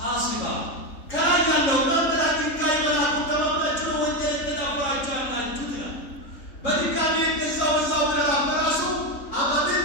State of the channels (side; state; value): right; late; 3.6 ms